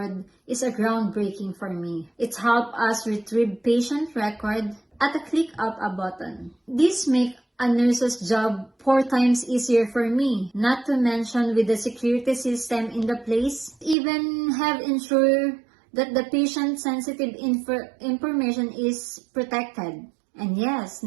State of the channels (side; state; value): left; drops out; at 14.0 s